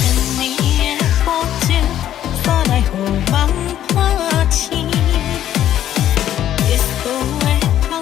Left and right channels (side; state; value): right; quieter; 11.5 dB